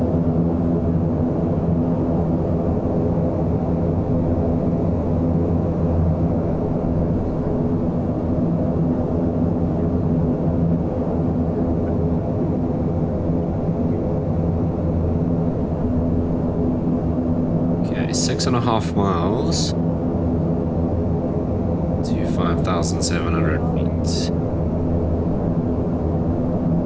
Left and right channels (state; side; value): identical; both; correlation 1.00